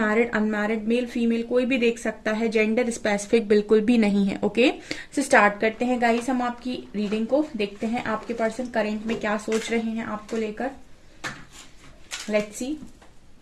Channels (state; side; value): identical; both; correlation 1.00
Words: unmarried male female कोई भी देख सकता है, जेंडर स्पेसिफिक बिल्कुल भी नहीं है। ओके, तो स्टार्ट करते हैं गाइस, हम आपकी रीडिंग को देखते हैं आपके पर्सन करेंट में क्या सोच रहे हैं आपको लेकर। Let's see.